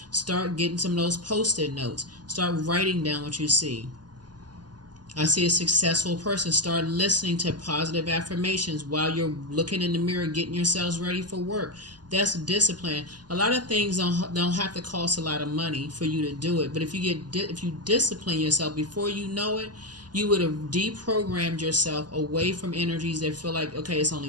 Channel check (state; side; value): late; left; 0.70 ms